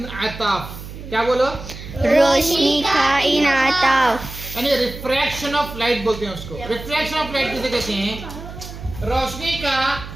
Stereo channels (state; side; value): noise; right; hum, 12 dB below the sound